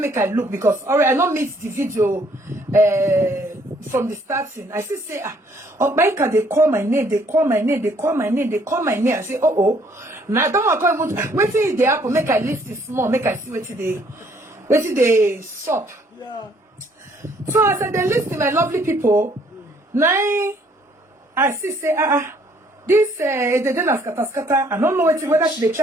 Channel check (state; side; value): normal; both; correlation 0.64